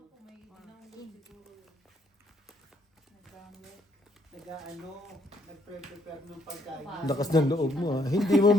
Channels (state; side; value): normal; both; correlation 0.69